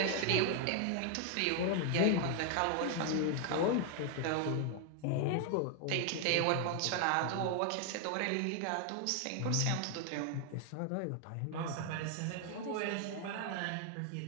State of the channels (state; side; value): different; both; correlation 0.00